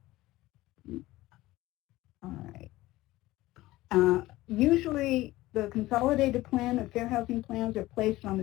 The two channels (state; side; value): quieter; right; 17.7 dB